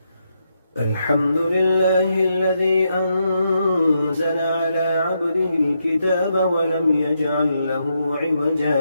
الحمد لله الذي أنزل على عبده الكتاب ولم يجعل له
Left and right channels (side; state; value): both; inverted; correlation -0.81